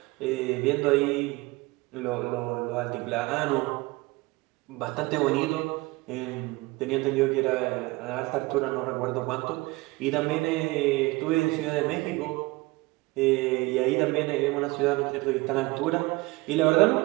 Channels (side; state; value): left; quieter; 22.7 dB